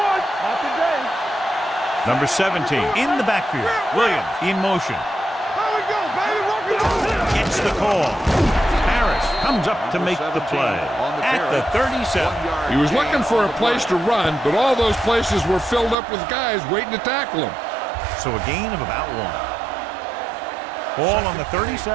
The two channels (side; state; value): left; drops out; at 16.0 s